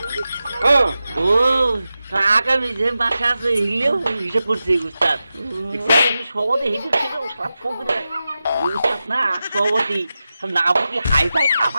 ও আগামী যে মাসে আছে হিলেও হিসেব করছি উস্তাদ সভাপতি হিসেব ছিল সব ফকিরে উস্তাদ না সভাপতি না বুঝি হাই ফাই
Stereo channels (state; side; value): inverted; both; correlation -0.93